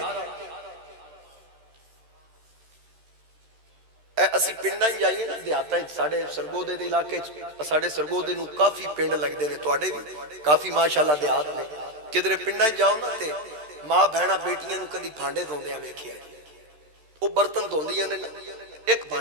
اسی پنڈاں ہی جائیے نا دیہاتاں ساڑھے سرگودے دے علاقے، ساڑھے سرگودے نو کافی پنڈ لگ دے نے، توڑے بھی کافی ماشاءاللہ دیہات نے، کدھرے پنڈاں جاؤ نا تے ماں بہنا بیٹیاں نو کدی بھانڈے دھوندے ہیں ویکھیا، وہ برتن دھوندیاں نے ایک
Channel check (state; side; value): late; left; 13 ms